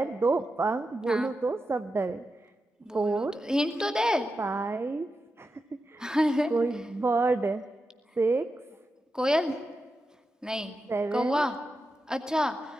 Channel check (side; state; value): both; normal; correlation 0.89